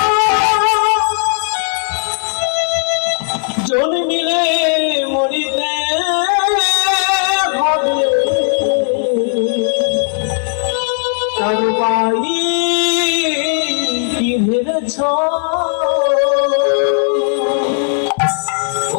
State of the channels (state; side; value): silent; right; 64 dB below the other